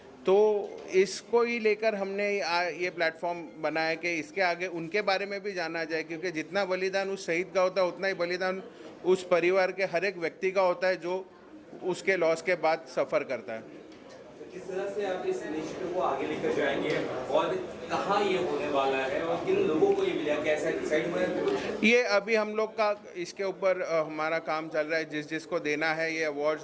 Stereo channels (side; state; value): both; identical; correlation 1.00